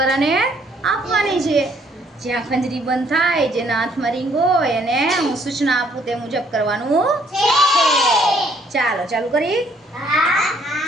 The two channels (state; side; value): normal; both; correlation 0.65